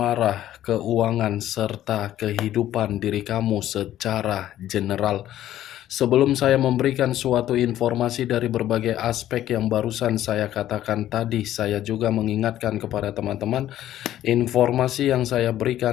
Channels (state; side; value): quieter; right; 12.7 dB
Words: keuangan, serta kehidupan diri kamu secara general. Sebelum saya memberikan suatu informasi dari berbagai aspek yang barusan saya katakan tadi, saya juga mengingatkan kepada teman-teman, informasi yang saya